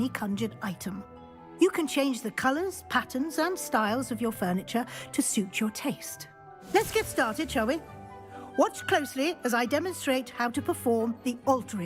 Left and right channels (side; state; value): both; identical; correlation 1.00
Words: conjured item. You can change the colors, patterns, and styles of your furniture to suit your taste. Let's get started, shall we? Watch closely as I demonstrate how to perform the